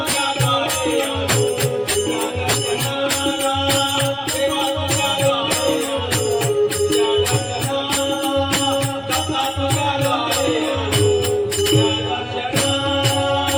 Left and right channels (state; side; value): identical; both; correlation 1.00